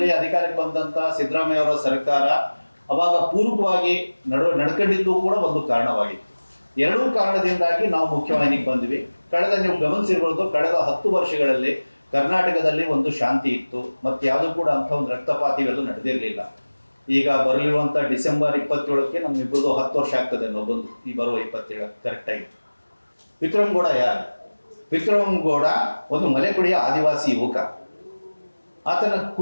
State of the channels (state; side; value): inverted; both; correlation -1.00